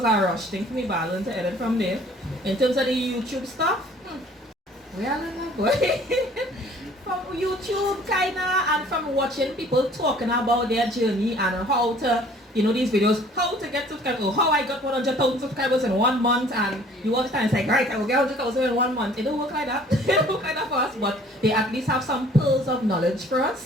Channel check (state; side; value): normal; both; correlation 0.54